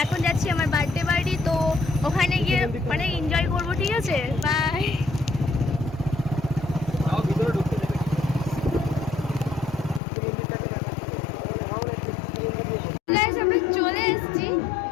এখন যাচ্ছি আমার বার্থডে বাড়ি, তো ওখানে গিয়ে অনেক এনজয় করবো, ঠিক আছে? বাই। আমরা চলে এসেছি।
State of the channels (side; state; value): right; drops out; at 10.0 s